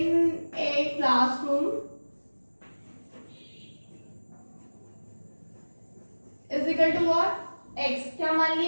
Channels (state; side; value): inverted; both; correlation -1.00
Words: a classroom is equal to what, x। क्या मान